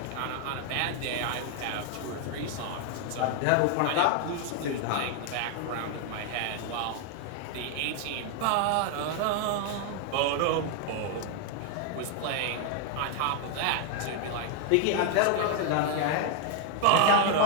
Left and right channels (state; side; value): different; both; correlation 0.00